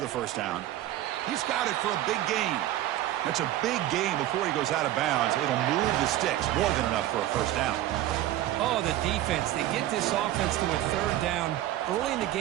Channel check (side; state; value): left; quieter; 14.0 dB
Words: the first down. He's got it for a big gain. That's a big gain before he goes out of bounds. It'll move the sticks, more than enough for a first down. Oh, the defense. They get this offense to a 3rd down early in the